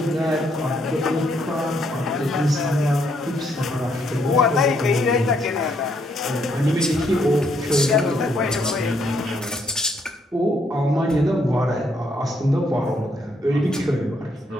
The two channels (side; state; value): both; normal; correlation 0.72